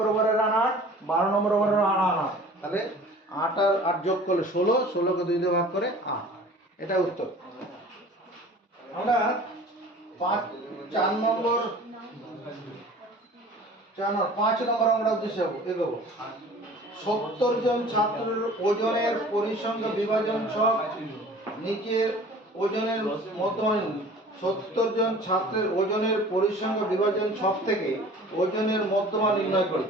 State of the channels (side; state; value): both; normal; correlation 0.45